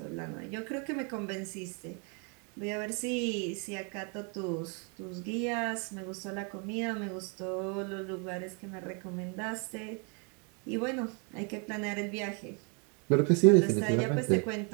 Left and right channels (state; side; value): quieter; left; 36.1 dB